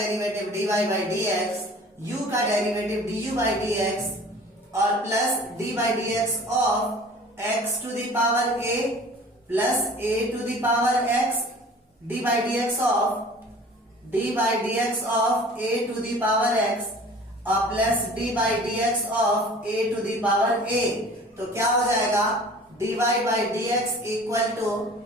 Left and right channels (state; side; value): normal; both; correlation 0.45